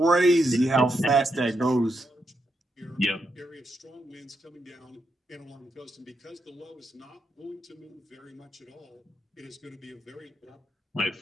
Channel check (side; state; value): both; normal; correlation 0.82